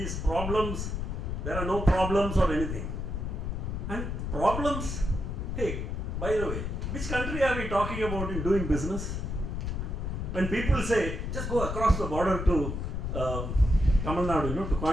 problems, there are no problems or anything. And problems, hey, by the way, which country are we talking about in doing business? When people say, just go across the border to Tamil Nadu, to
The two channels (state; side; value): noise; left; rumble, 3 dB below the sound